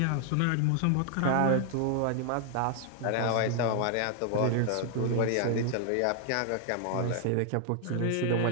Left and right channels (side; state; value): both; different; correlation 0.00